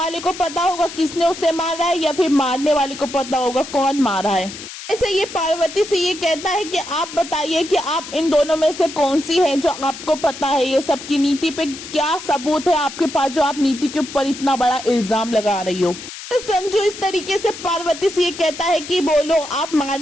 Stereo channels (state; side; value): noise; left; hiss, 12 dB below the sound